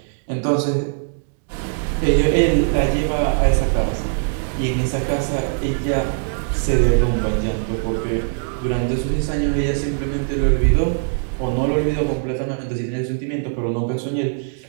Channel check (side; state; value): left; silent; digital silence